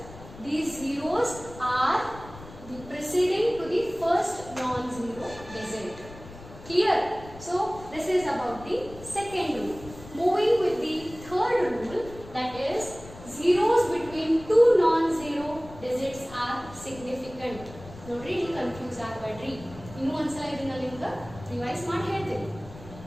these zeros are the preceding to the first non-zero digit. Clear? So this is about the second rule. Moving with the third rule, that is zeros between two non-zero digits are significant. ನೋಡ್ರಿ, ನೀವು confuse ಆಗಬೇಡ್ರಿ. ಇನ್ನೂ ಒಂದ್ಸಲ ಇದನ್ನ ನಿಮ್ಗೆ revise ಮಾಡಿ ಹೇಳ್ತೀನಿ.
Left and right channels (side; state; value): left; noise; rumble, 17 dB below the sound